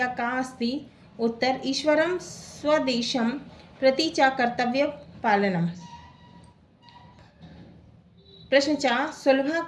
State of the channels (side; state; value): both; identical; correlation 1.00